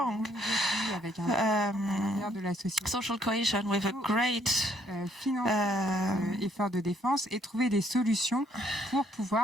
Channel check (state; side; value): normal; both; correlation 0.67